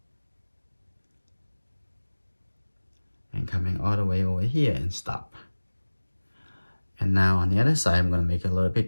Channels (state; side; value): inverted; both; correlation -1.00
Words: And coming all the way over here and stop. And now on the other side, I'm gonna make it a little